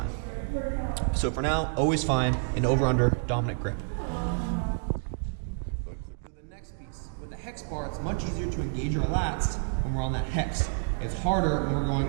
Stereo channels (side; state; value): left; silent; 59 dB below the other